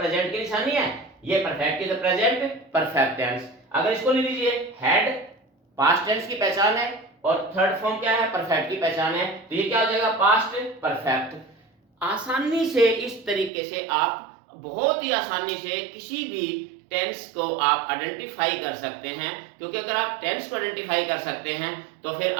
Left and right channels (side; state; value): left; drops out; at 13.5 s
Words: की निशानी है, ये परफेक्ट की तो प्रेजेंट परफेक्ट टेंस। अगर इसको ले लीजिए, हैड पास्ट टेंस की पहचान है और थर्ड फॉर्म क्या है? परफेक्ट की पहचान है, तो ये क्या हो जाएगा? Past perfect. आसानी से इस तरीके से आप बहुत ही आसानी से किसी भी टेंस को आप आइडेंटिफाई कर सकते हैं, क्योंकि अगर आप टेंस को आइडेंटिफाई कर सकते हैं तो फिर